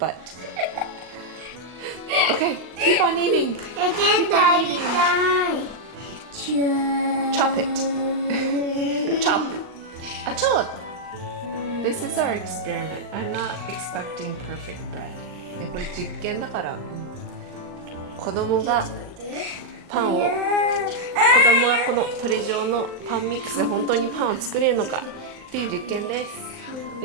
keep on eating. ケントやりたい。Chop it. Chop. Chop. This is our experiment. I'm not expecting perfect bread. ね、これ実験だから、子供がパンを、子供はこのトレジョーのパンミックスで本当にパンを作れるのかっていう実験です。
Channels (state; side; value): late; left; 39 ms